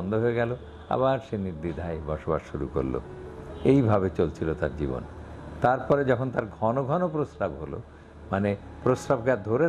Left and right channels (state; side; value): identical; both; correlation 1.00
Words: হয়ে গেল, আবার সে নির্দ্বিধায় বসবাস শুরু করলো। এইভাবে চলছিল তার জীবন। তারপরে যখন তার ঘন ঘন প্রস্রাব হলো, মানে প্রস্রাবকে আর ধরে